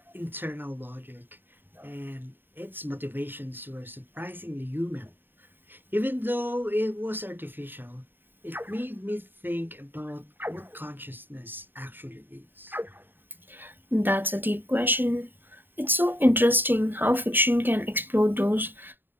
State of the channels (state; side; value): late; left; 0.095 ms